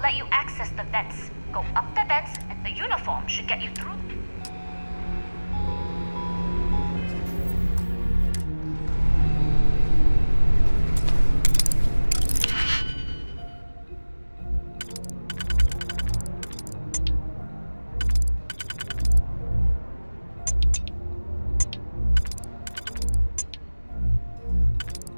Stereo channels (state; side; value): inverted; both; correlation -1.00